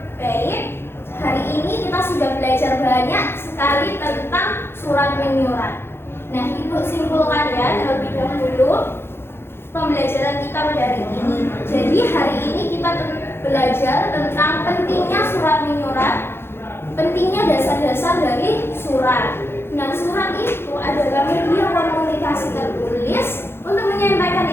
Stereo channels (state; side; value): late; right; 0.11 ms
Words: Baik, hari ini kita sudah belajar banyak sekali tentang surat menyurat. Nah, Ibu simpulkan ya terlebih dahulu pembelajaran kita pada hari ini. Jadi hari ini kita belajar tentang pentingnya surat menyurat, pentingnya dasar-dasar dari surat. Nah, surat itu adalah media komunikasi tertulis untuk menyampaikan